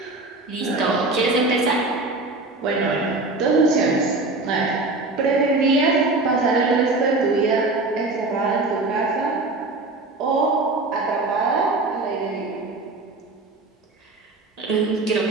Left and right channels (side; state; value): left; quieter; 3.2 dB